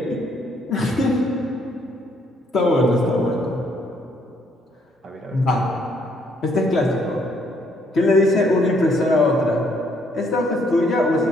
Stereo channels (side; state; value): both; normal; correlation 0.68